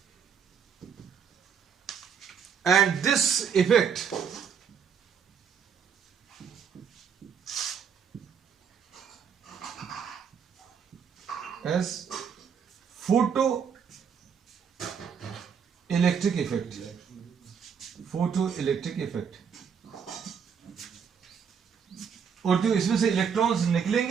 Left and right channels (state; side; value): quieter; left; 7.0 dB